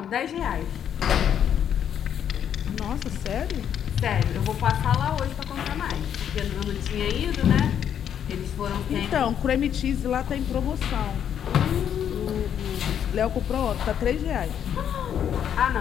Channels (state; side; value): quieter; right; 9.1 dB